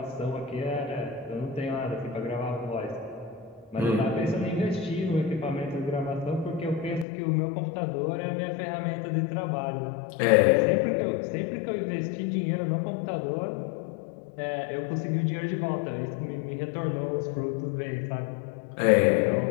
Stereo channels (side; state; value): right; drops out; at 7.1 s